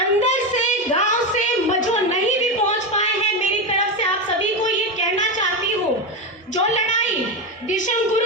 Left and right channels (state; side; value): normal; both; correlation 0.14